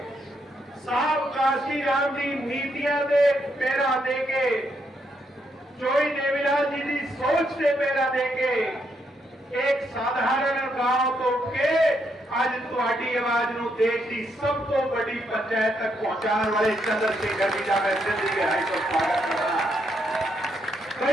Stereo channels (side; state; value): both; normal; correlation 0.77